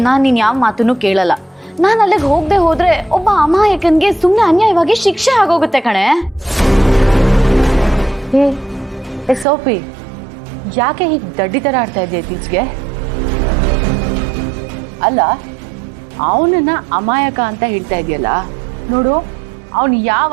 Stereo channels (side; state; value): left; drops out; at 9.5 s